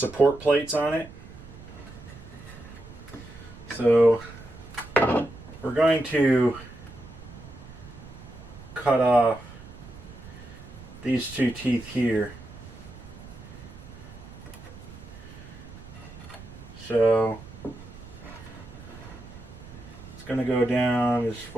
plates on it. So we're going to cut off these two teeth here. So it's going to go down as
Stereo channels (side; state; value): right; noise; rumble, 16 dB below the sound